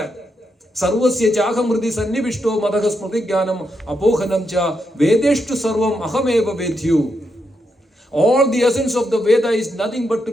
Sarvasya Chahamriti Sannivishto Madhagas Pratigyanam Apohanam Cha Vedeshtu Sarvam Ahameva Vedhyu. All the essence of the Veda is nothing but to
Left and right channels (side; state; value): both; normal; correlation 0.82